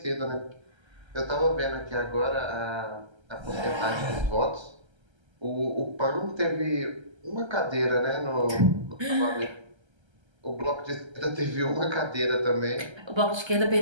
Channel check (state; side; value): late; left; 1.3 ms